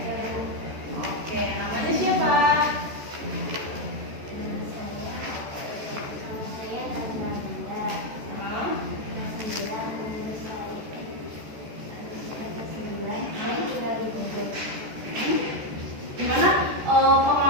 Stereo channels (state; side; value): late; left; 14 ms